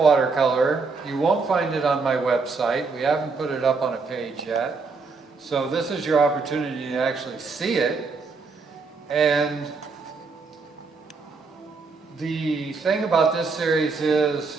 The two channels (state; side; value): quieter; left; 4.4 dB